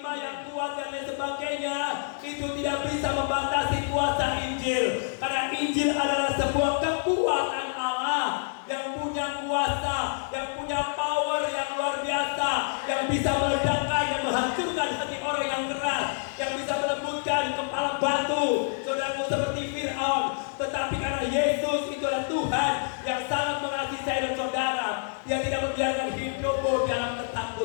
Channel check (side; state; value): right; silent; digital silence